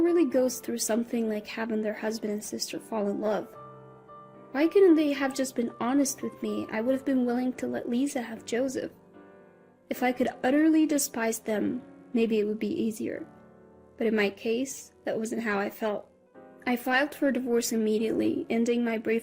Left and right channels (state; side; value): identical; both; correlation 1.00